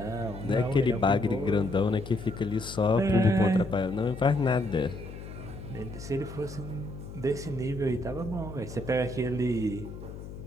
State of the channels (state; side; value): noise; left; hum, 12 dB below the sound